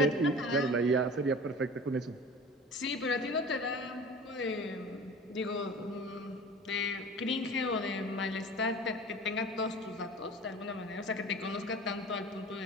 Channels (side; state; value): both; normal; correlation 0.39